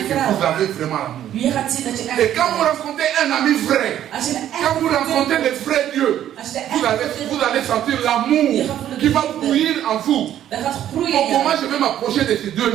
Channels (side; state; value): left; quieter; 11.3 dB